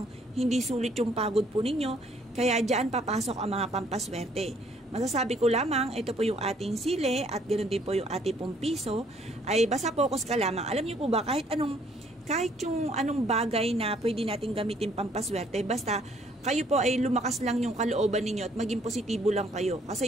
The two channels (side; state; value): both; normal; correlation 0.63